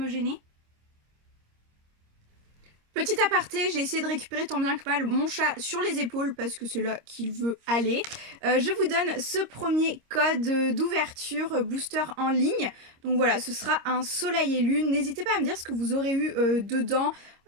gêner ? Petit aparté, j'ai essayé de récupérer tant bien que mal mon chat sur les épaules parce que c'est là qu'il veut aller. Je vous donne ce premier code d'ouverture booster en ligne. Donc voilà, ce sera un Soleil et Lune. N'hésitez pas à me dire ce que vous aurez eu dedans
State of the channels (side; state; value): left; late; 26 ms